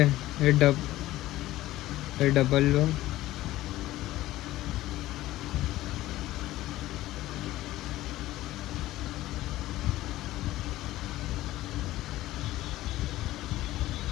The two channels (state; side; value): quieter; right; 16.0 dB